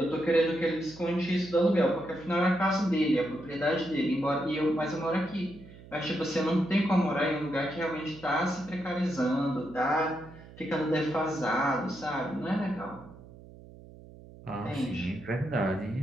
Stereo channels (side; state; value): right; noise; hum, 19 dB below the sound